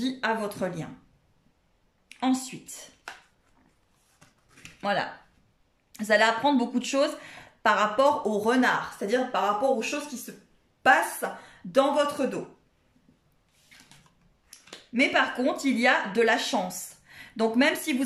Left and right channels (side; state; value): both; identical; correlation 1.00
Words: à votre lien. Ensuite, voilà. Vous allez apprendre beaucoup de choses par rapport au renard, c'est-à-dire par rapport aux choses qui se passent dans votre dos. Mais par contre, il y a de la chance. Donc même si